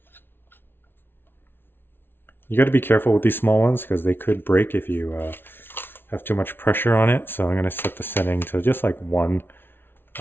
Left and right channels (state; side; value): late; right; 0.11 ms